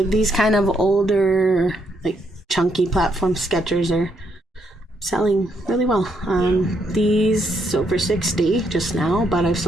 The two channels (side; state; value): both; normal; correlation 0.75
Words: these kind of older, like chunky platform Skechers are selling really well. These sold for 60 just now, but I've